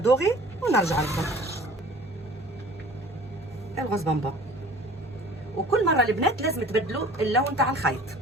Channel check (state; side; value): normal; both; correlation 0.46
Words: ونرجع لكم الغوز بامبا. وكل مره البنات لازم تبدلوا اللون تاع الخيط.